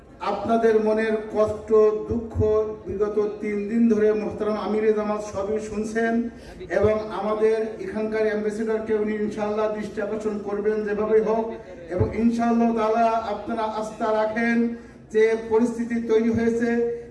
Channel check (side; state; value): both; identical; correlation 1.00